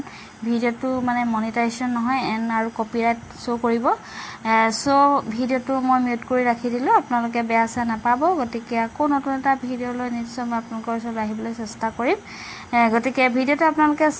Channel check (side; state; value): both; identical; correlation 1.00